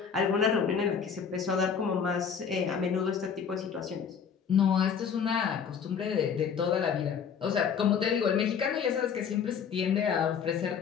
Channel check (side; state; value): right; quieter; 7.0 dB